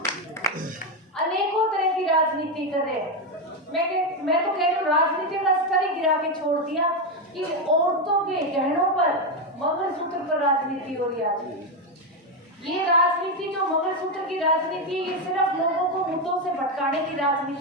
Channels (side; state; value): both; normal; correlation 0.08